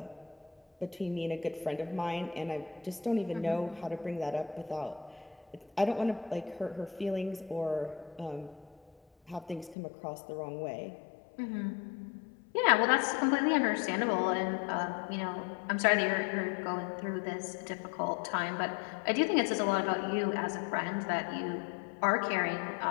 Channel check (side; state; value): right; drops out; at 9.8 s